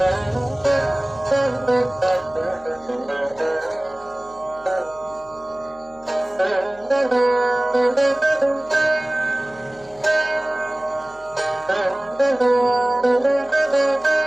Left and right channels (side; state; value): left; noise; hum, 26 dB below the sound